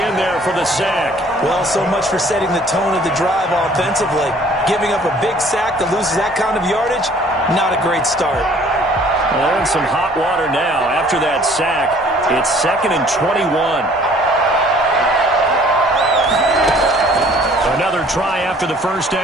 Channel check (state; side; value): normal; both; correlation 0.55